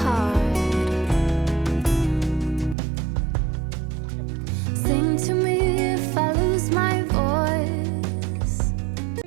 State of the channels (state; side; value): drops out; left; at 2.8 s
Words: Sing to me if I lose my voice.